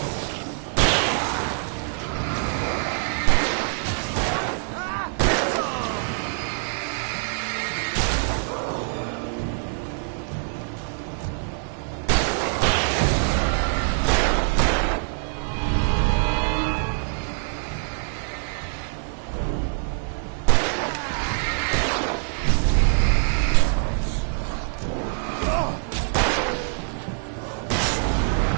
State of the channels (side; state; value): left; silent; 60 dB below the other